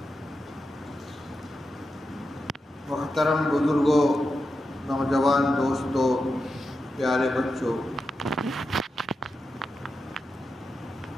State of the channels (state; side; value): normal; both; correlation 0.88